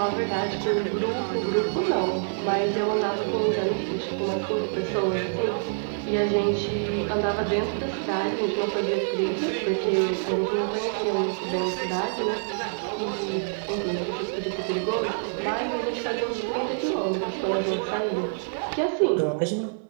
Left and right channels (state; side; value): silent; left; 59 dB below the other